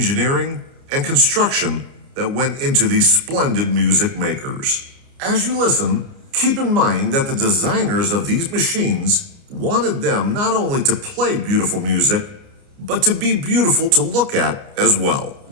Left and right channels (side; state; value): left; late; 29 ms